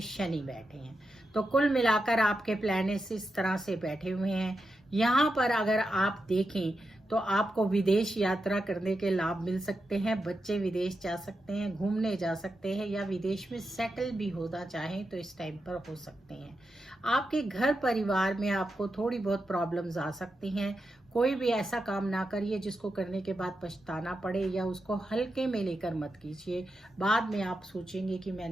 शनि बैठे हैं। तो कुल मिलाकर आपके प्लैनेट्स इस तरह से बैठे हुए हैं। यहाँ पर अगर आप देखें तो आपको विदेश यात्रा करने के लाभ मिल सकते हैं। बच्चे विदेश जा सकते हैं, घूमने जा सकते हैं या विदेश में सेटल भी होना चाहें तो इस टाइम पर हो सकते हैं। आपके घर परिवार में आपको थोड़ी बहुत प्रॉब्लम्स आ सकती हैं। कोई भी ऐसा काम ना करिए जिसको करने के बाद पछताना पड़े, या उसको हल्के में लेकर मत कीजिए। बाद में आप सोचेंगे कि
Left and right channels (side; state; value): both; normal; correlation 0.88